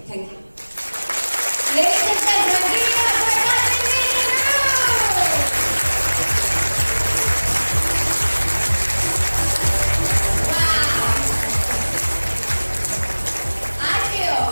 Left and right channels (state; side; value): inverted; both; correlation -1.00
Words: thank you. Ladies and gentlemen, give it up for Dr. Wow.